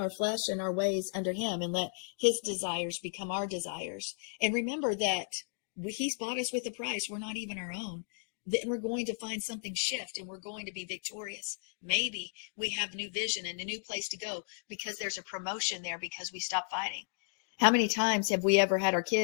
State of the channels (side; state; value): right; silent; digital silence